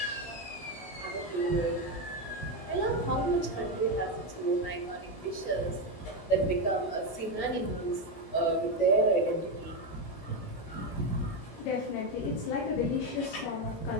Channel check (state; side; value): late; right; 18 ms